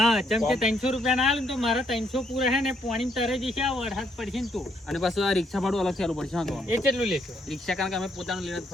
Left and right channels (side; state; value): both; normal; correlation 0.72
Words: જેમ કે 300 રૂપિયા ના આલે ને તો મારા 300 પૂરા હે ને પાણી તરે જશે. આ વરસાદ પડશે ને તો અને પાછું આ રિક્ષા ભાડું અલગ ચાલુ પડશે. હા તો એ કેટલું લેશો? રિક્ષા કારણ કે અમે પોતાનું લઈને જ